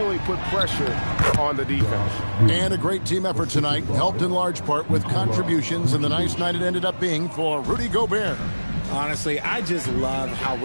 put pressure on the defense. And a great team effort tonight, helped in large part with contributions, and the nice night it ended up being for Rudy Gobert. Honestly, I just love how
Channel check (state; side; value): inverted; both; correlation -1.00